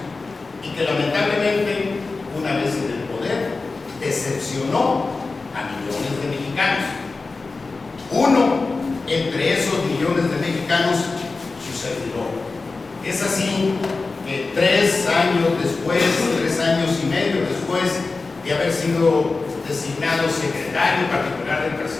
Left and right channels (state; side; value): quieter; right; 3.9 dB